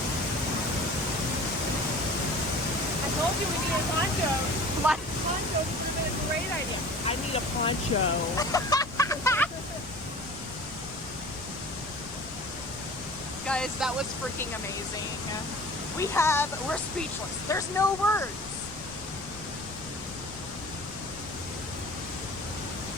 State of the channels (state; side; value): noise; left; rumble, 17 dB below the sound